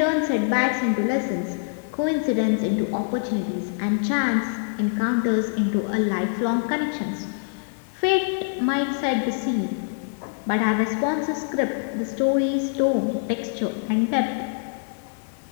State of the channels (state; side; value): silent; right; 62 dB below the other